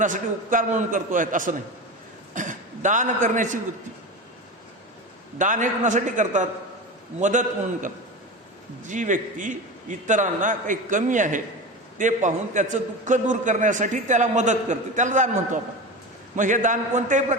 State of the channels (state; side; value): normal; both; correlation 0.26